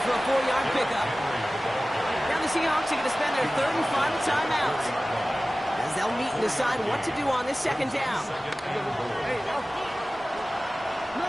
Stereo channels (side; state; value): both; normal; correlation 0.97